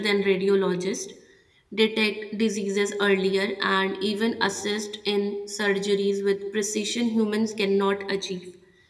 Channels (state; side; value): identical; both; correlation 1.00